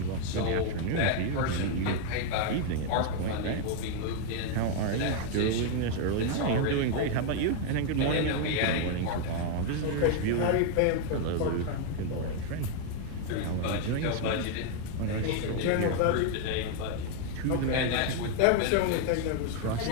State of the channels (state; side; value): different; both; correlation 0.00